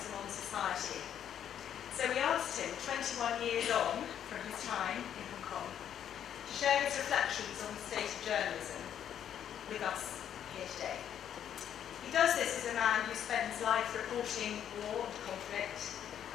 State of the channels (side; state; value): right; quieter; 9.6 dB